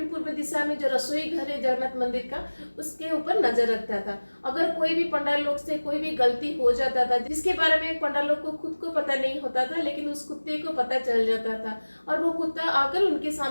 पूर्व दिशा में जो रसोई घर है जगन्नाथ मंदिर का उसके ऊपर नजर रखता था। अगर कोई भी पंडाल लोग से कोई भी गलती हो जाता था जिसके बारे में पंडाल लोग को खुद को पता नहीं होता था, लेकिन उस कुत्ते को पता चल जाता था और वो कुत्ता आकर उनके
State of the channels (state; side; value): inverted; both; correlation -1.00